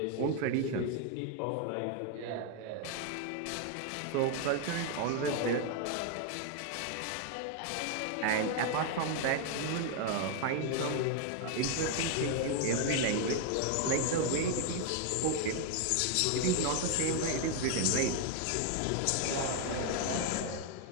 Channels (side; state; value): both; different; correlation 0.01